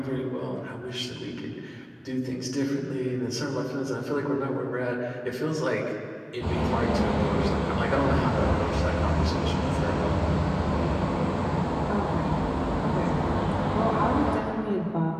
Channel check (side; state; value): both; identical; correlation 1.00